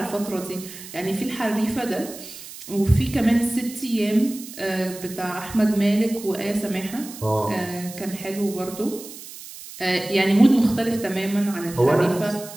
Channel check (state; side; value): noise; right; hiss, 14 dB below the sound